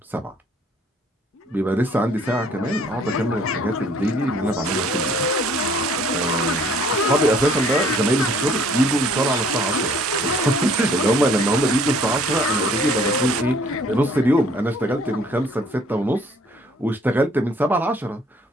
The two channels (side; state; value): both; normal; correlation 0.58